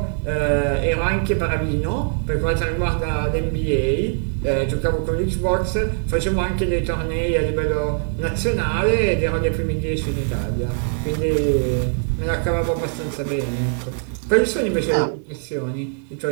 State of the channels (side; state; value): left; silent; 64 dB below the other